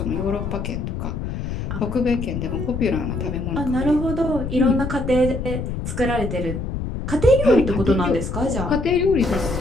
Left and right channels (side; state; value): left; noise; rumble, 4 dB below the sound